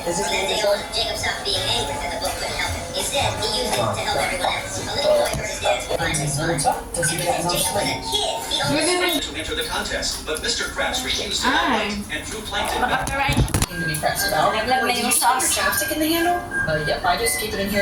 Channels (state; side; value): identical; both; correlation 1.00